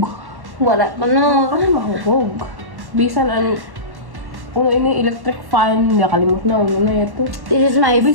Wala. Ano? Ano mahubog? Bisan uno ini electric fan, nakalimot na uno na ito. This is my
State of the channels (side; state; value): left; late; 1.1 ms